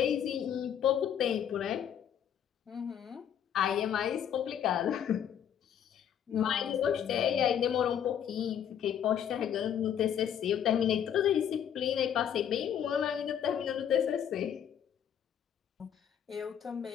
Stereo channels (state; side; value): quieter; right; 9.2 dB